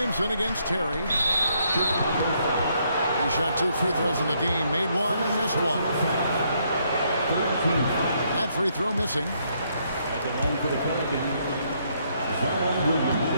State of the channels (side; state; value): both; inverted; correlation -0.73